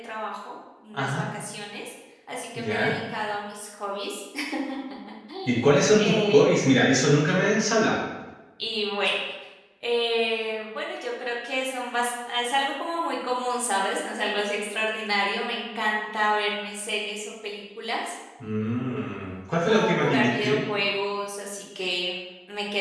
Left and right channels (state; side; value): identical; both; correlation 1.00